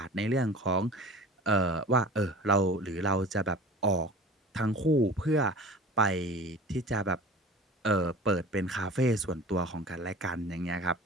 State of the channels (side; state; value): both; normal; correlation 0.40